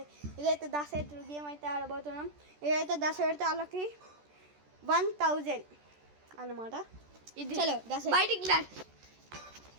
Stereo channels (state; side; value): late; left; 14 ms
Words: ఇదైతే దాసెట్టు గేమ్ అయితే ఆడబోతున్నాం. ఇదైతే దాస పెడితే వాళ్ళకి 1000 అన్నమాట. ఇది చలో దాస బయటికి